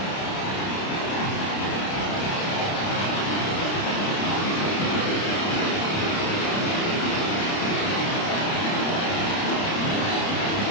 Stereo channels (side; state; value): right; late; 30 ms